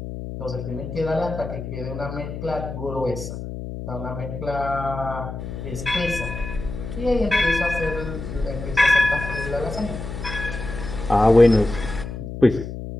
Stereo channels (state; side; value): noise; left; hum, 8 dB below the sound